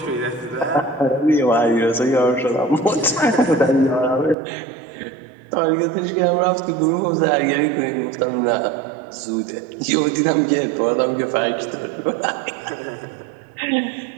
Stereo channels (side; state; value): left; drops out; at 4.4 s